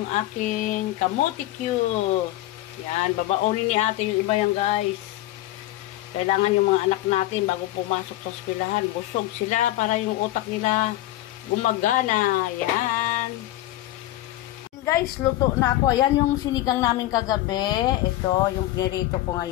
aking kamote cube. Yan, babaonin ni ate yung iba yan, guys. Kailangan yung mga anak natin bago pumasok sa eskwelahan, busog sila para yung utak nila gumagana. Yan. Guys, luto na ako. Ayan yung sinigang namin kagabi. Ito, yung pinirito ko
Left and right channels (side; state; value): right; quieter; 15.6 dB